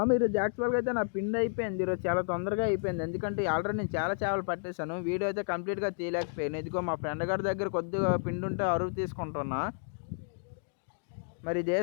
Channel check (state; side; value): silent; right; digital silence